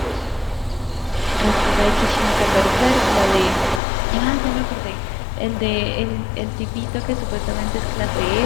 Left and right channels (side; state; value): right; drops out; at 3.8 s